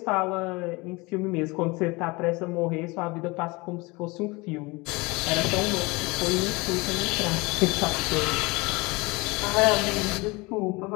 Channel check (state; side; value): quieter; right; 25.0 dB